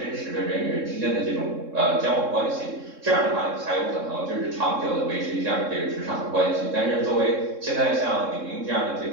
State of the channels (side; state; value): left; late; 3.7 ms